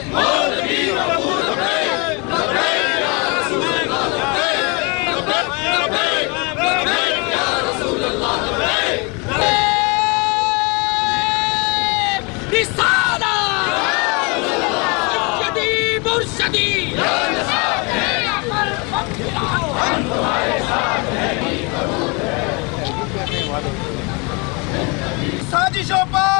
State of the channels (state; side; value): quieter; right; 30.6 dB